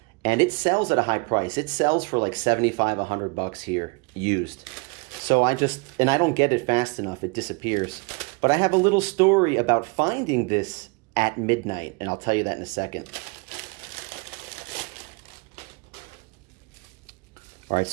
and it sells at a high price. It sells for like 75, 100 bucks here, used. So I don't get it fast enough, it disappears. But I have a little story about finding this at midnight, and I'll tell you that in a second. All right,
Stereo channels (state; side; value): quieter; left; 30.5 dB